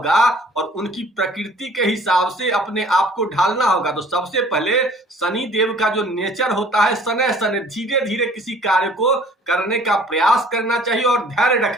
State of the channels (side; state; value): both; normal; correlation 0.53